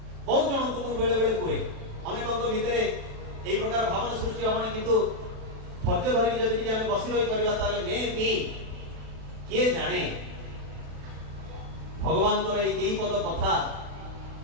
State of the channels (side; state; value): left; late; 36 ms